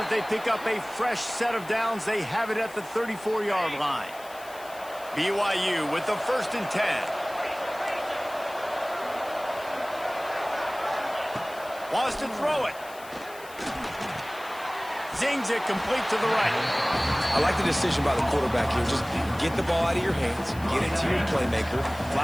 they pick up a fresh set of downs. They have it at the 34-yard line. BYU with the 1st and 10. Wants to throw it. Zings it complete to the right. I like the decision by the quarterback here. Just get the ball out of your hands, get it to your playmaker. A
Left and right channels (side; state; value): left; noise; hiss, 19 dB below the sound